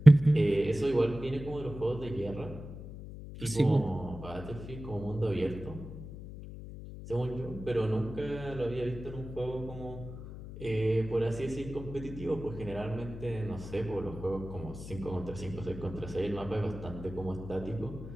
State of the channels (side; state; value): left; noise; hum, 11 dB below the sound